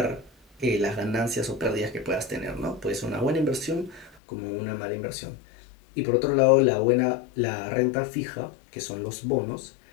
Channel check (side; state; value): right; drops out; at 4.2 s